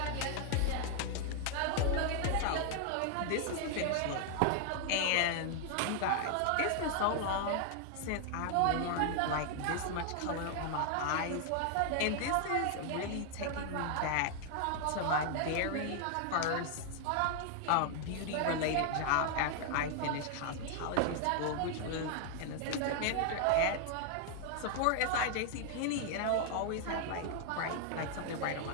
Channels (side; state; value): both; different; correlation 0.00